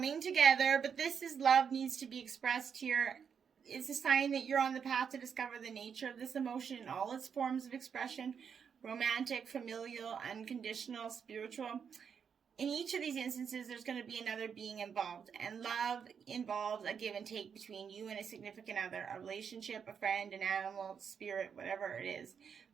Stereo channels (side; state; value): left; quieter; 7.0 dB